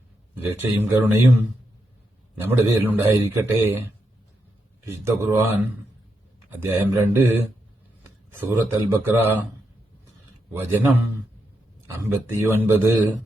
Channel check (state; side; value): normal; both; correlation 0.83